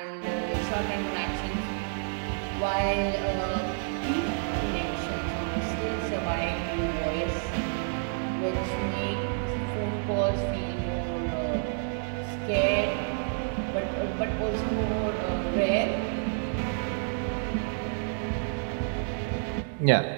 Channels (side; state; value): left; silent; 58 dB below the other